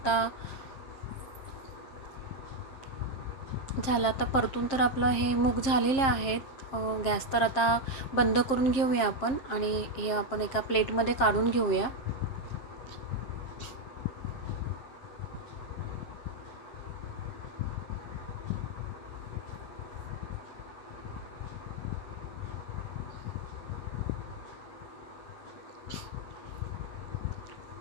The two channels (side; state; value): right; late; 7.5 ms